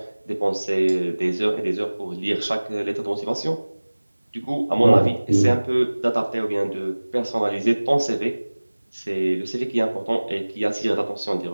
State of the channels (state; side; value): inverted; both; correlation -1.00